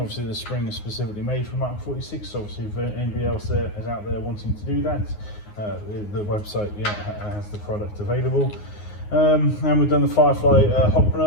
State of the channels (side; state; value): right; late; 9.6 ms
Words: the spring is specifically made for MK46, so obviously if anybody else is out there wanting to do that, the website has the product available. And we've done the Firefly hot